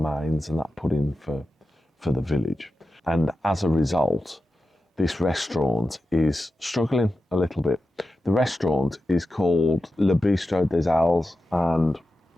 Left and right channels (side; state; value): both; normal; correlation 0.91